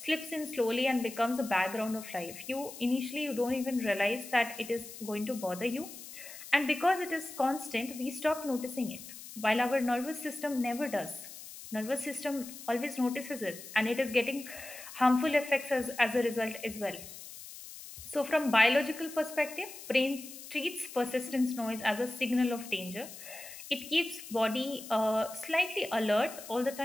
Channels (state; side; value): noise; left; hiss, 14 dB below the sound